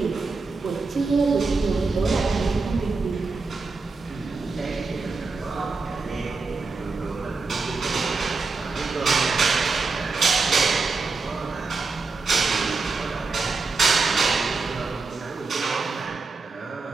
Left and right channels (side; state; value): left; quieter; 4.2 dB